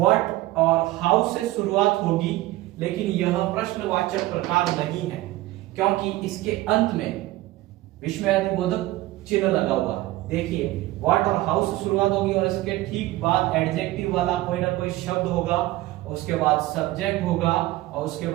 और हाउ से शुरुआत होगी, लेकिन यह प्रश्नवाचक प्रकार नहीं है क्योंकि इसके अंत में विस्मयादिबोधक चिन्ह लगा हुआ है। देखिए व्हाट और हाउ से शुरुआत होगी और इसके ठीक बाद एडजेक्टिव वाला कोई ना कोई शब्द होगा, उसके बाद सब्जेक्ट होगा और उसके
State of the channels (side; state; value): left; quieter; 17.5 dB